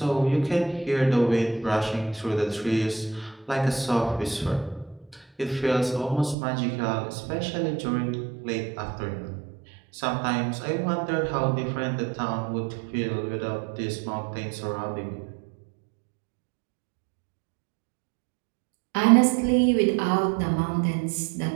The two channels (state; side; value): drops out; left; at 6.4 s